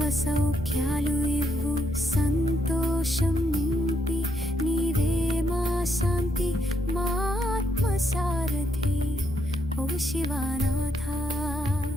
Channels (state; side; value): normal; both; correlation 0.77